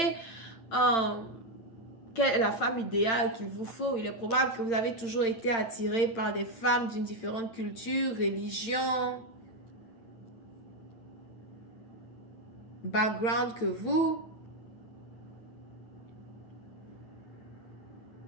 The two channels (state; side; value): late; right; 8.8 ms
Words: quelle est la femme idéale qu'il vous faut. Il est probable que vous avez toujours été attiré par des femmes d'une différente culture, religion, background que vous.